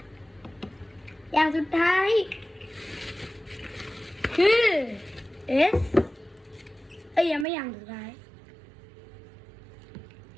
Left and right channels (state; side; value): drops out; left; at 7.5 s